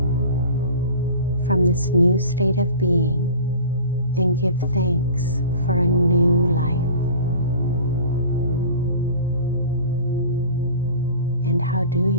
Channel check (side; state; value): both; inverted; correlation -0.40